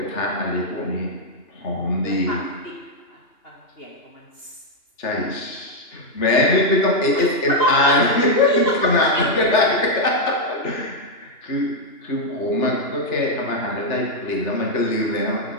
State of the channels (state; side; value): late; right; 2.9 ms